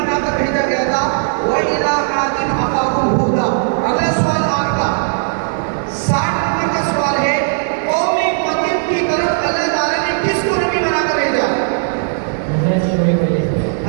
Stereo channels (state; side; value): silent; left; 63 dB below the other